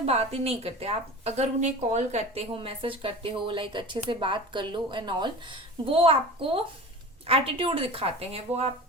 बात ही नहीं करते। आप अगर उन्हें कॉल करते हो, मैसेज करते हो, लाइक अच्छे से बात कर लो एंड ऑल, वो आपको एटीट्यूड दिखाते हैं, वो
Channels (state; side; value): normal; both; correlation 0.34